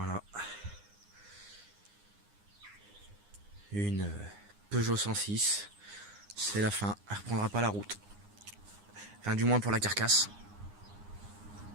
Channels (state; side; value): late; left; 9.7 ms